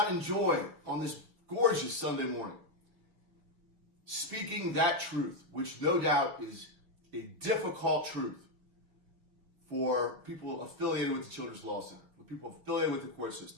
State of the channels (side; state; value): left; late; 5.3 ms